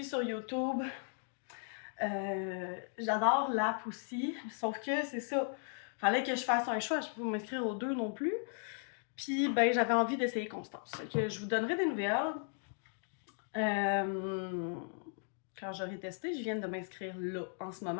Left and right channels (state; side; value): silent; right; 53 dB below the other